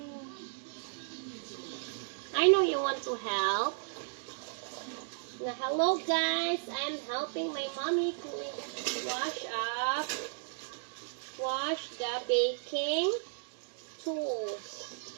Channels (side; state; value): left; silent; digital silence